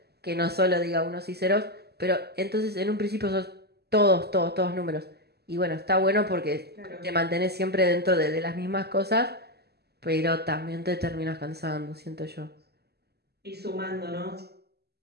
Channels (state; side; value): late; left; 0.47 ms